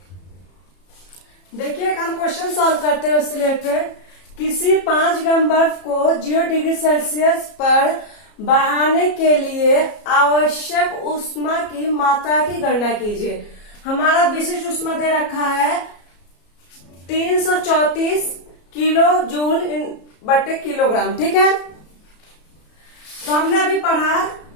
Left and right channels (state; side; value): late; right; 33 ms